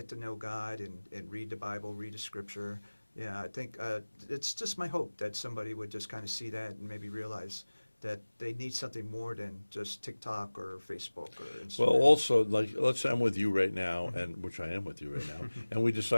to know God and read the Bible, read the Scripture. Yeah, I think it's just my hope that somebody would just kind of see that and maybe realize that they need something more than just TikTok or Facebook or Instagram. Well, also, like, let's say I'm with you right now, and which I am with you right now, and we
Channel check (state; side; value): inverted; both; correlation -1.00